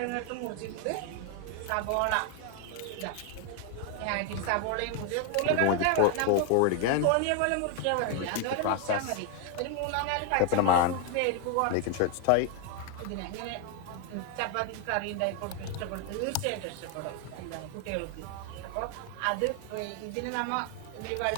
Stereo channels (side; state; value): both; different; correlation 0.00